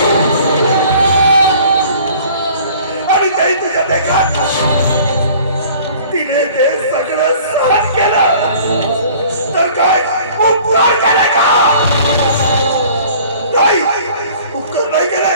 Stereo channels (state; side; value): inverted; both; correlation -0.50